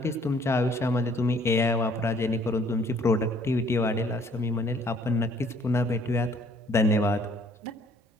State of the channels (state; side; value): normal; both; correlation 0.60